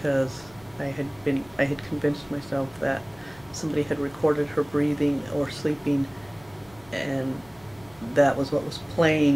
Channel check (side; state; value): left; noise; rumble, 26 dB below the sound